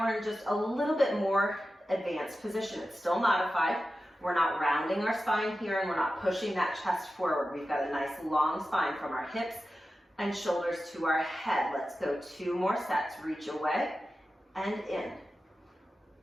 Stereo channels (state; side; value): normal; both; correlation 0.93